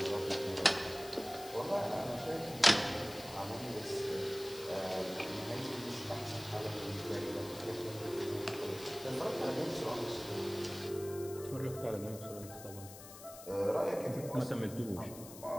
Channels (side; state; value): left; noise; hiss, 15 dB below the sound